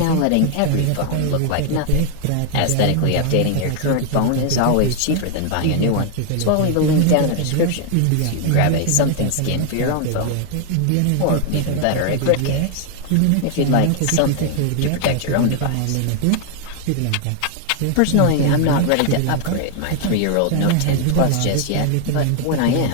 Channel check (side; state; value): both; different; correlation 0.00